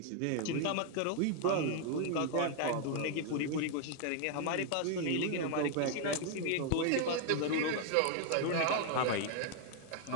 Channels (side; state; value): both; different; correlation 0.00